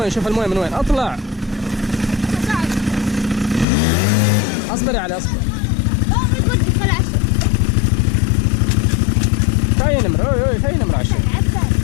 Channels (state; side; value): drops out; right; at 3.7 s